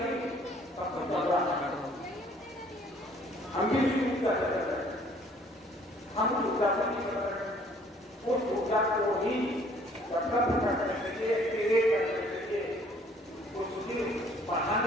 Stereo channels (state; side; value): normal; both; correlation 0.58